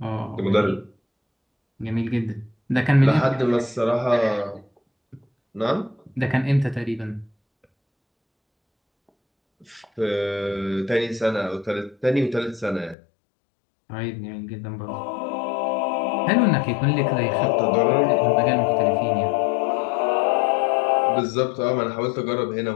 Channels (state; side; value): drops out; right; at 13.0 s